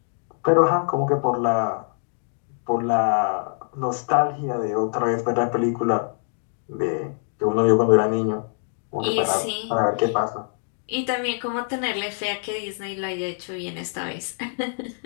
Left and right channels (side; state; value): right; silent; digital silence